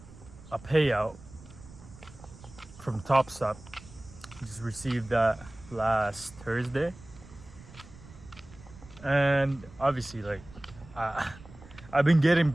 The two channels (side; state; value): right; noise; rumble, 20 dB below the sound